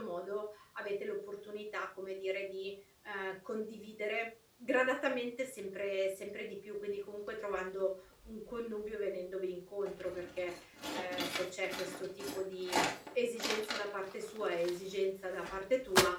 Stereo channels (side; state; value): both; identical; correlation 1.00